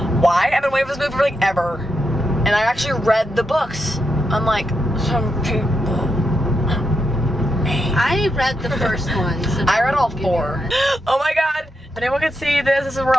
Why? I've been waiting for this movie for like ever. And I actually read the books. Unlike some people. I read the first one. So I read all 4. Oh my god. If anyone can see this, this is where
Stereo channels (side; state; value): both; normal; correlation 0.83